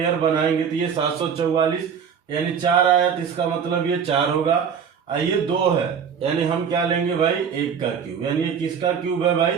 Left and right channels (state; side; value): quieter; left; 7.1 dB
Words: बनाएंगे तो ये 744 यानी 4 आया, तो इसका मतलब ये 4 होगा। ये 2 है यानी हम क्या लेंगे भाई, 1 का क्यूब, यानी ये किसका क्यूब है भाई,